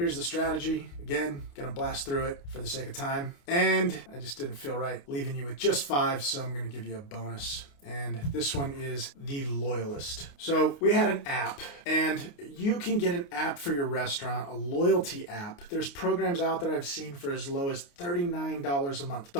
the strategy. Again, gonna blast through it for the sake of time. And I just didn't feel right leaving you with just 5, so I'm gonna give you a bonus. And this one is the Loyalist. So we had an app, and you can get an app for your restaurant, a loyalty app. There's programs out there I've seen for as low as $39 a month. The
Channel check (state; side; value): late; right; 29 ms